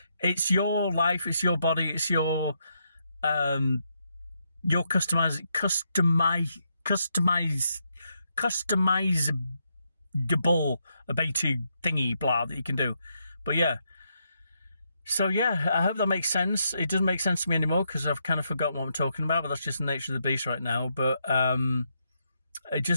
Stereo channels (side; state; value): both; inverted; correlation -0.79